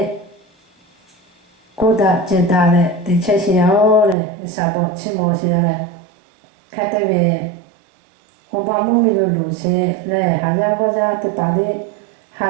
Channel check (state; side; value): drops out; left; at 4.2 s